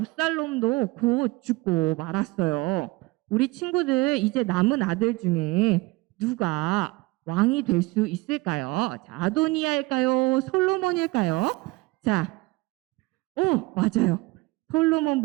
곧 죽고 말았어요. 우리 친구들 이제 남은 아들 중에 누가 왕이 될 수 있을까요? 자, 아도니아일까요? 솔로몬일까요? 자, 맞아요.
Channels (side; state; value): left; quieter; 22.3 dB